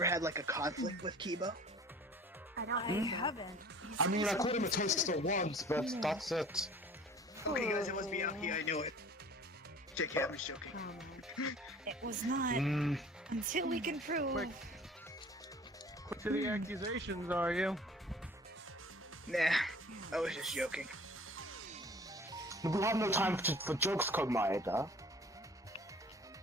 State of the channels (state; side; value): normal; both; correlation 0.47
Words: had like a conflict with Kibo? I don't I think so. haven't. I mean, I called him a taster once, but that's it. Okay, guys, it was Miyaki. I knew it. JK, I'm just joking. Oh, man. It was not Mm, until we can prove. Quick to the accusations, are you? Nah, I was just joking. we have no time for jokes, Komaeda.